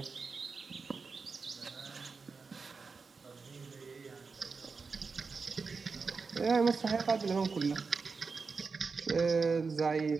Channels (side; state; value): left; quieter; 4.8 dB